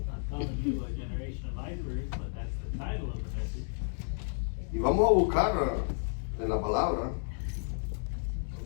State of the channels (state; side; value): silent; right; 57 dB below the other